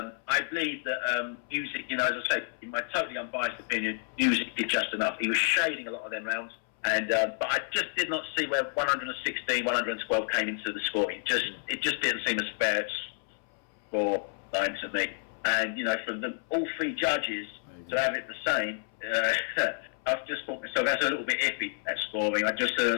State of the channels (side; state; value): right; silent; 58 dB below the other